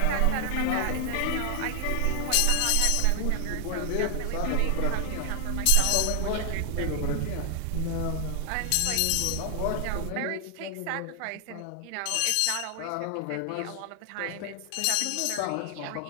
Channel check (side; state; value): both; different; correlation 0.00